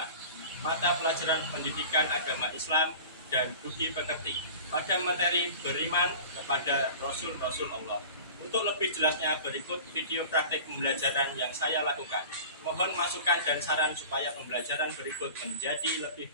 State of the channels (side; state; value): both; inverted; correlation -0.38